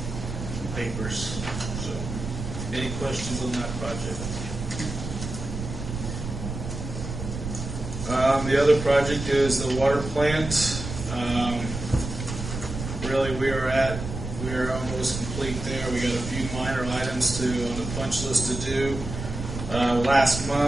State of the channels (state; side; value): noise; right; rumble, 7 dB below the sound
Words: papers. So, any questions on that project? The other project is the water plant. Really, we are almost complete there. We got a few minor items on the punch list to do. Last